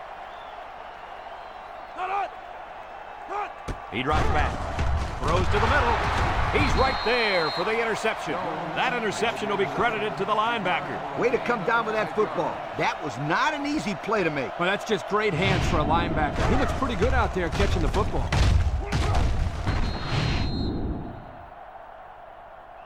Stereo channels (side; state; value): both; identical; correlation 1.00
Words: He drops back. Throws to the middle. He's right there for the interception. That interception will be credited to the linebacker. Way to come down with that football. That was not an easy play to make. Well, that's just great hands for a linebacker. He looks pretty good out there catching the football.